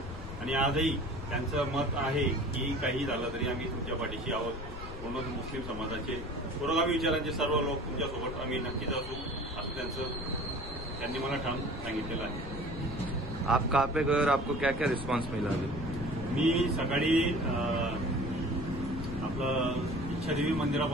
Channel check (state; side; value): noise; left; rumble, 9 dB below the sound